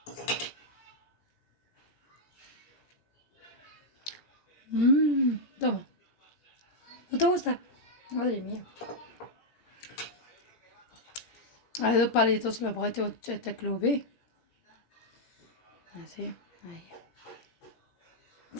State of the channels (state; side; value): late; right; 17 ms